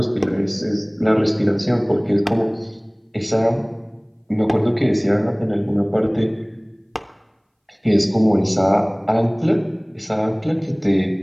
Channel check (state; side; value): identical; both; correlation 1.00